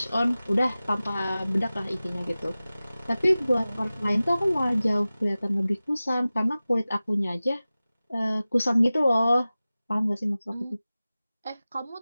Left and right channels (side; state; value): both; inverted; correlation -0.97